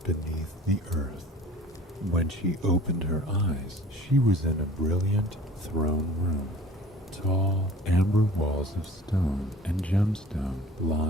beneath the earth. When she opened her eyes, she was in a brilliant throne room. Tall, amber walls of stone and gemstone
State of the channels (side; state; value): both; normal; correlation 0.46